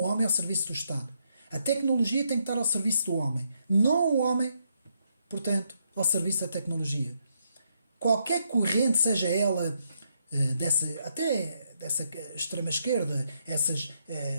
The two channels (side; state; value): both; inverted; correlation -0.77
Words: homem ao serviço do Estado. A tecnologia tem que estar ao serviço do homem, não o homem, portanto, ao serviço da tecnologia. Qualquer corrente, seja ela até dessa extrema-esquerda, essas